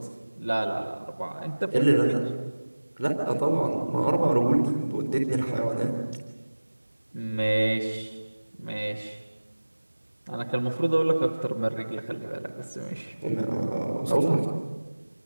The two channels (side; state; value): both; inverted; correlation -1.00